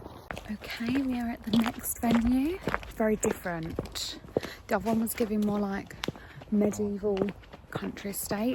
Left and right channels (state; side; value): identical; both; correlation 1.00